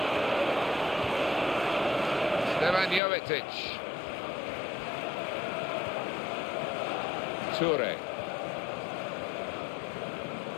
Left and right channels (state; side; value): drops out; right; at 3.0 s